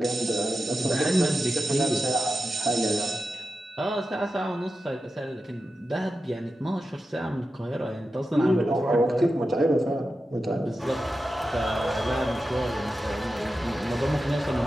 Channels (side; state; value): both; normal; correlation 0.91